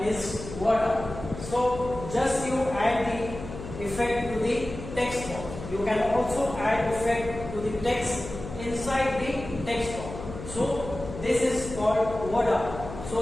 is border. So just you add the effect to the text box. You can also add effect to the text inside the text box. So this is called border.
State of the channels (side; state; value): left; noise; hum, 11 dB below the sound